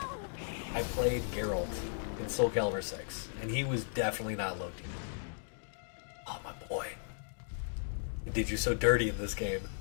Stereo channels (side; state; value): right; silent; digital silence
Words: I played Geralt in Soul Calibur 6, and he was definitely not low tier. Oh, my boy. He did you so dirty in this game.